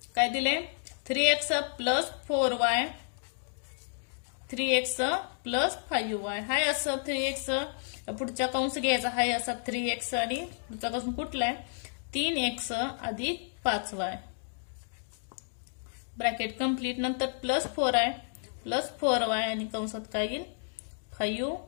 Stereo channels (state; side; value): silent; right; digital silence